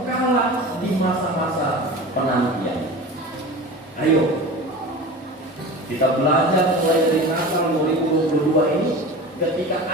kalah di masa-masa penantian. Ayo kita belajar mulai dari Natal 2022 ini. Ketika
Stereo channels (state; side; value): normal; both; correlation 0.33